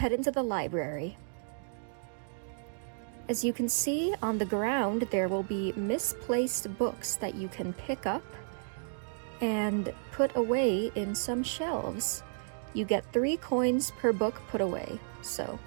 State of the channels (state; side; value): silent; left; digital silence